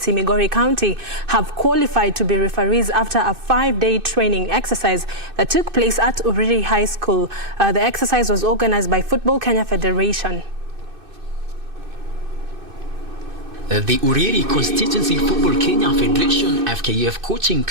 Migori County, have qualified to be referees after a 5-day training exercise that took place at Uriri High School. The exercise was organized by Football Kenya Federation. The Uriri Constituency Football Kenya Federation FKF coaching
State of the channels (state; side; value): late; left; 2.6 ms